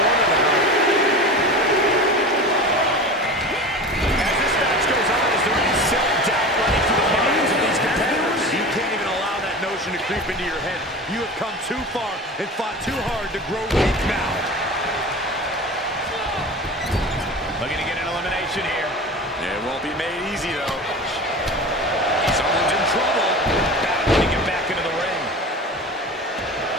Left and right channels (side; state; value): both; normal; correlation 0.33